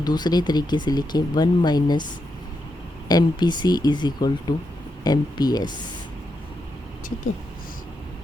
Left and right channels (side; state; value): both; normal; correlation 0.84